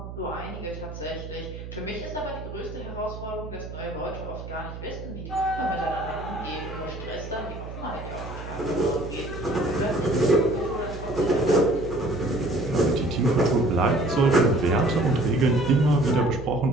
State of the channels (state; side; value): noise; right; hum, 10 dB below the sound